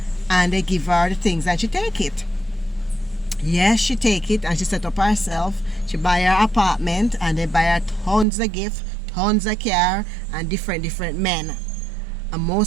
and they give her the things and she take it. Yes, she take it and she set up herself. She buy her apartment, and they buy her tons of gift, tons of car, and different men. And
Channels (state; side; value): drops out; left; at 8.2 s